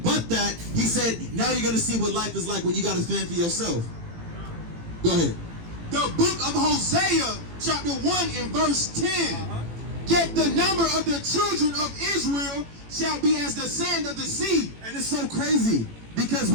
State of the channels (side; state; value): left; late; 18 ms